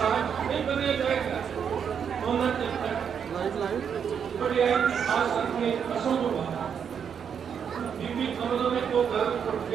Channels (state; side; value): quieter; left; 7.5 dB